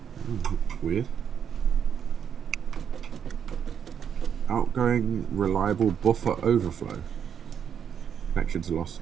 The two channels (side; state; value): left; quieter; 8.1 dB